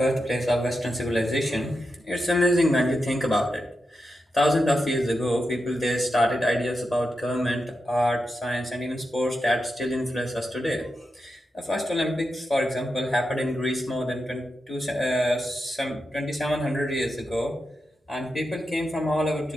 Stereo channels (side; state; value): both; normal; correlation 0.88